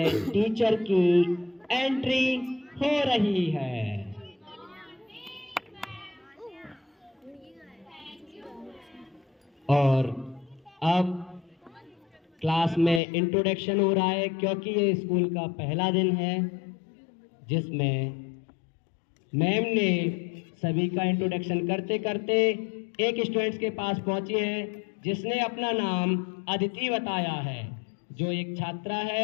टीचर की एंट्री हो रही है। और अब क्लास में इंट्रोडक्शन हो रहा है क्योंकि ये स्कूल का पहला दिन है जिसमें मैम ने सभी का इंट्रोडक्शन करते करते एक स्टूडेंट्स के पास पहुंची है जिसने अपना नाम अदिति बताया है। जो एक छात्रा है,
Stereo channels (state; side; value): drops out; right; at 13.0 s